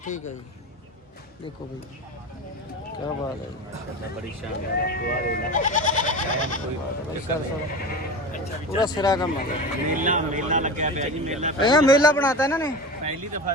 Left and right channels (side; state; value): both; normal; correlation 0.28